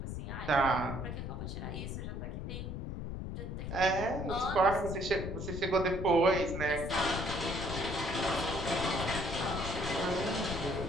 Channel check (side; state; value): left; noise; rumble, 5 dB below the sound